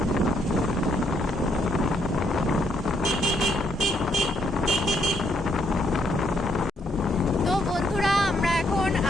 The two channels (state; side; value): normal; both; correlation 0.73